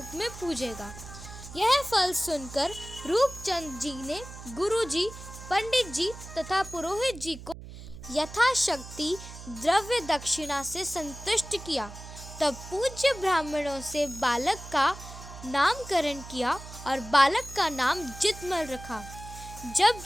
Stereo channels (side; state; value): right; noise; hum, 14 dB below the sound